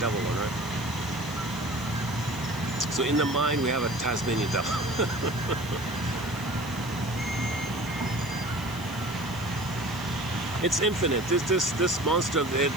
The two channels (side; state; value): left; noise; hiss, 17 dB below the sound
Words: one, right? So in the mind, we have a Tasmanian devil. It's infinite. This monster of it,